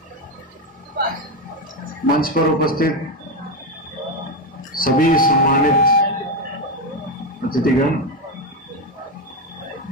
मंच पर उपस्थित सभी सम्मानित अतिथिगण,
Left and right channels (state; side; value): normal; both; correlation 0.10